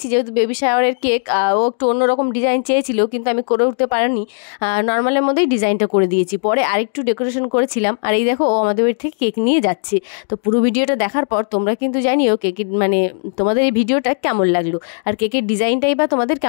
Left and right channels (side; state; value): right; silent; digital silence